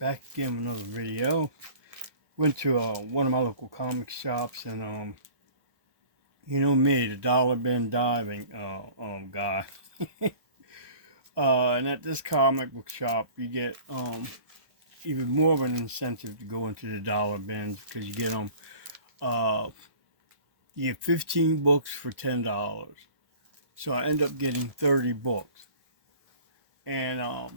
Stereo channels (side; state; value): left; late; 1.1 ms